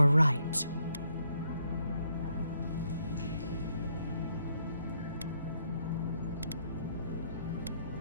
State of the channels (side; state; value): both; inverted; correlation -0.74